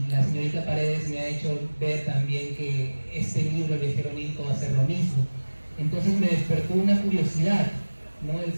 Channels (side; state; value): both; inverted; correlation -1.00